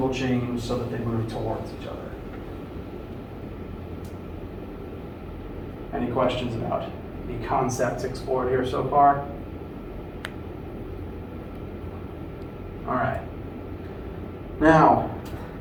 change so that they move towards each other. Any questions about the concepts explored here so far? All right. Now,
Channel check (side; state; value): both; identical; correlation 1.00